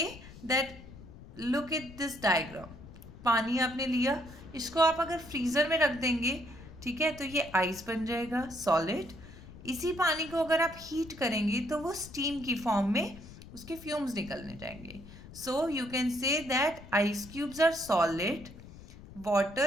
that, look at this diagram. पानी आपने लिया, इसको आप अगर फ्रीज़र में रख देंगे, ठीक है, तो ये आइस बन जाएगा, सॉलिड। इसी पानी को अगर आप हीट करेंगे तो वो स्टीम की फॉर्म में उसके फ्यूम्स निकलने जाएंगे। So you can say that ice cubes are solid,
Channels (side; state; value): left; noise; rumble, 17 dB below the sound